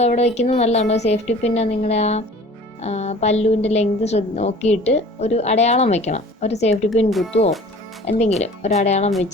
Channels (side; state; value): both; normal; correlation 0.46